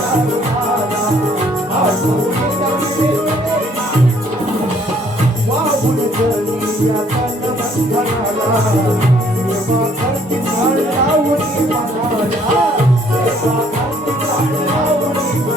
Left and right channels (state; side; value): normal; both; correlation 0.62